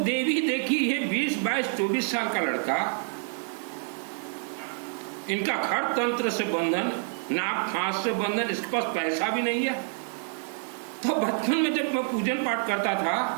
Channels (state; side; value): silent; left; 60 dB below the other